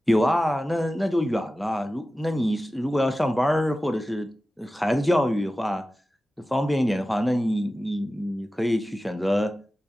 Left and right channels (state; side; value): normal; both; correlation 0.95